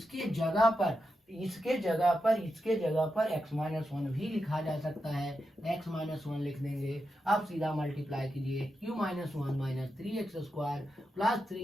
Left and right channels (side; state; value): both; normal; correlation 0.88